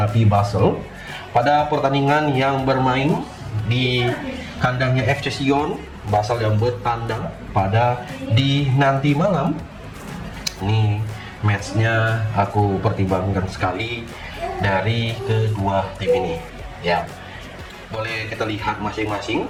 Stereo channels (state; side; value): identical; both; correlation 1.00